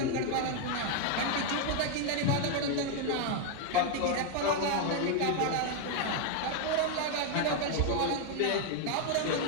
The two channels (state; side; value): different; both; correlation 0.00